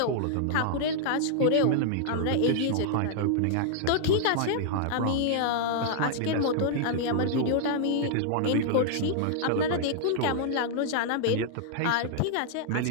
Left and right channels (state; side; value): different; both; correlation -0.01